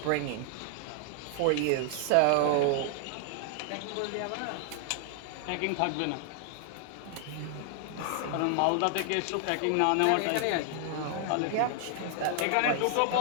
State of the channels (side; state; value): both; different; correlation 0.00